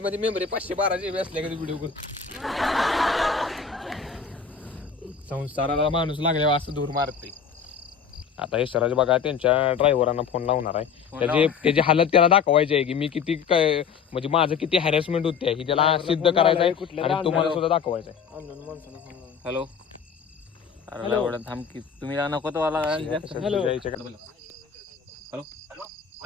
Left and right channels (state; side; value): quieter; right; 6.5 dB